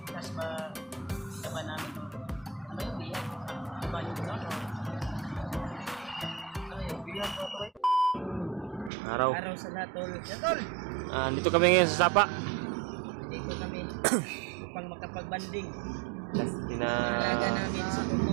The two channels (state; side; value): drops out; left; at 8.9 s